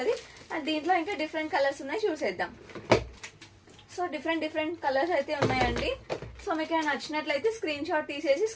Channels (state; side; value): identical; both; correlation 1.00